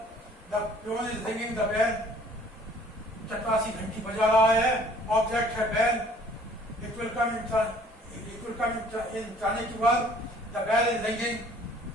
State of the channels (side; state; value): both; normal; correlation 0.55